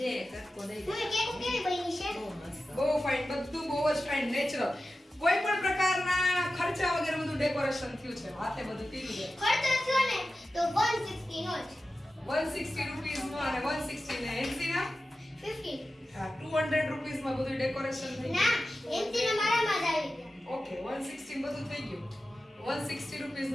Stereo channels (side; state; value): both; normal; correlation 0.94